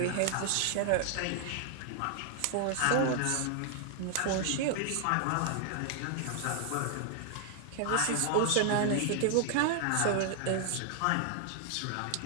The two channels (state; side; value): different; both; correlation 0.00